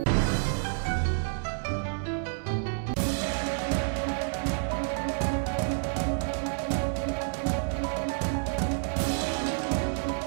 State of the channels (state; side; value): silent; left; 56 dB below the other